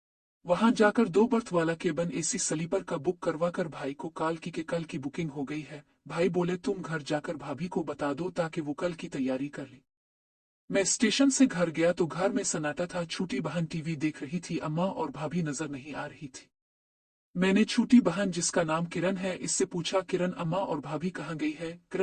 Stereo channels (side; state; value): both; identical; correlation 1.00